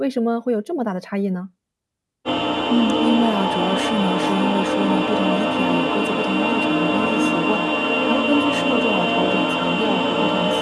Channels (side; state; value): both; identical; correlation 1.00